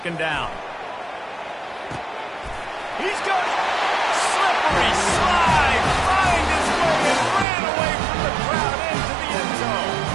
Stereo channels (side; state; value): left; drops out; at 7.5 s